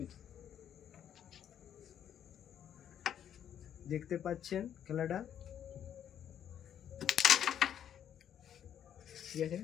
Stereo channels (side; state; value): right; quieter; 9.6 dB